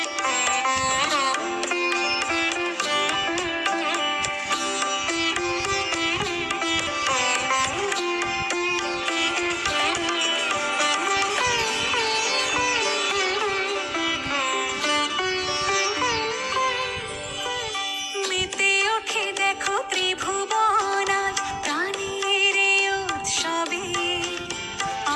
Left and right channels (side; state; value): both; identical; correlation 1.00